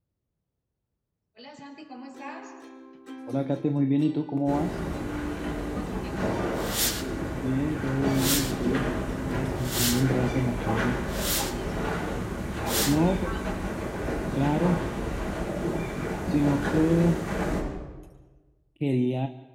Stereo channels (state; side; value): identical; both; correlation 1.00